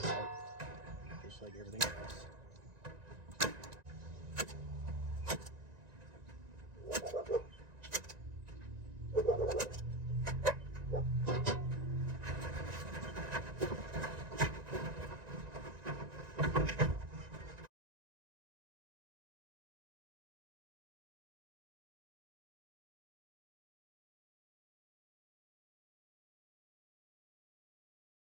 sharp, just like everything else.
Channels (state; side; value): late; left; 1.9 ms